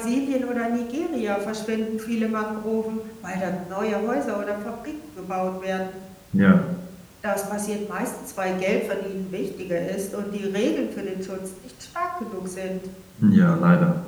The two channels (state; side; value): identical; both; correlation 1.00